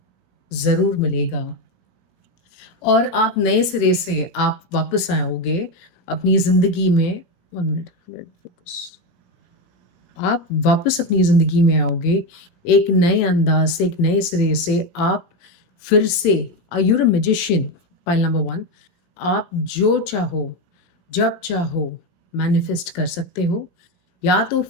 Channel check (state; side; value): late; right; 17 ms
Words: ज़रूर मिलेगा। और आप नए सिरे से आप वापस आओगे अपनी ज़िंदगी में। 1 मिनट, लेट फोकस। आप वापस अपनी ज़िंदगी में आओगे एक नए अंदाज से, एक नए सिरे से। आप फिर से you're a magician, pile number 1। आप जो चाहो, जब चाहो मैनिफेस्ट कर सकते हो। या तो